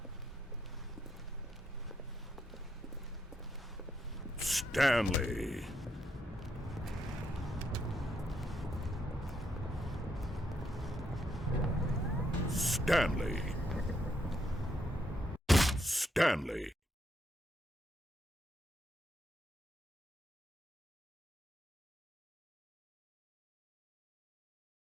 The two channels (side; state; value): both; normal; correlation 0.78